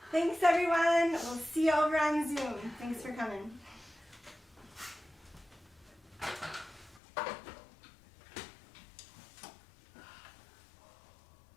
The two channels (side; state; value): right; drops out; at 7.0 s